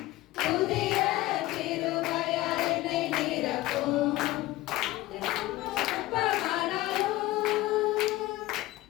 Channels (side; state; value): right; quieter; 17.4 dB